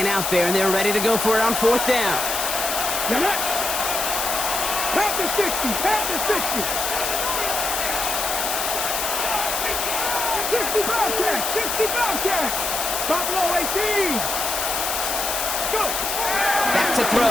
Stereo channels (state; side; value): noise; left; hiss, 1 dB below the sound